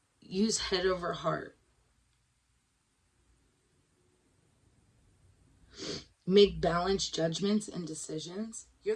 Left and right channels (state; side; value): identical; both; correlation 1.00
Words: Use head over heart. Make balanced judgments and decisions. You're